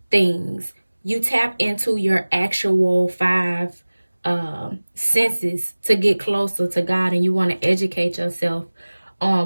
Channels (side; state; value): both; inverted; correlation -1.00